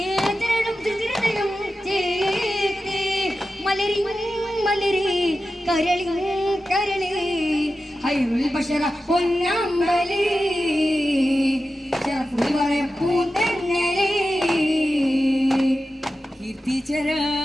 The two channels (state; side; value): normal; both; correlation 0.92